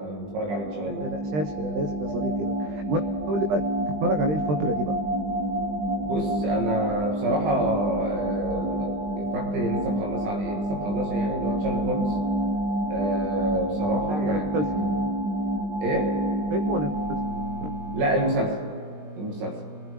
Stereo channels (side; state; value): left; late; 20 ms